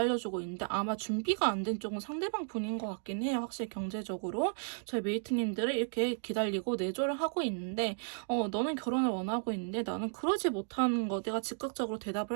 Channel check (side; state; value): left; silent; digital silence